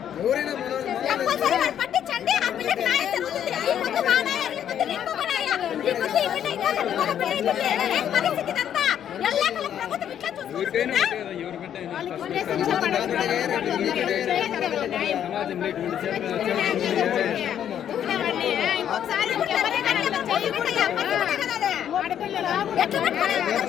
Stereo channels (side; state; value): right; quieter; 9.8 dB